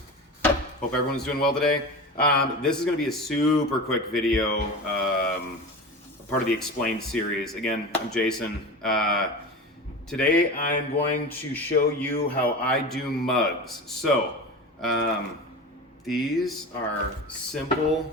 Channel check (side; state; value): both; normal; correlation 0.29